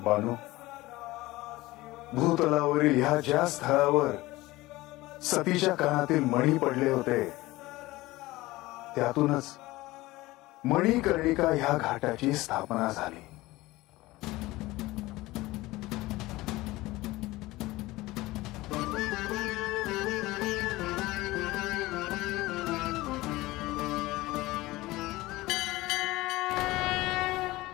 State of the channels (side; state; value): right; quieter; 19.2 dB